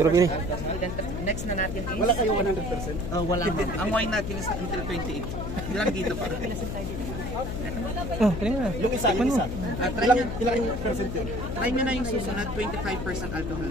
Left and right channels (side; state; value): left; noise; hum, 5 dB below the sound